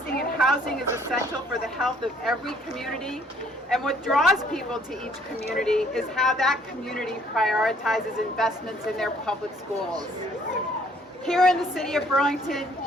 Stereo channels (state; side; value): normal; both; correlation 0.61